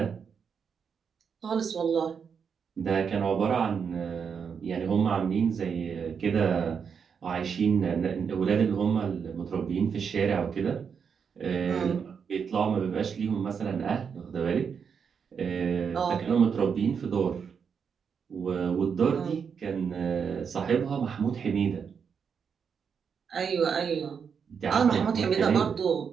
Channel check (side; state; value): left; quieter; 6.6 dB